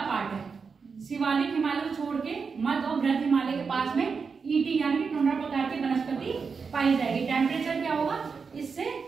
पार्ट है, शिवालिक हिमालय को छोड़ के मध्य और बृहद हिमालय के पास में ईटी यानी कि टुंड्रा प्रकार की वनस्पति पाई जाएगी। टेम्परेचर क्या होगा, इससे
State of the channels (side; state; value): left; quieter; 5.3 dB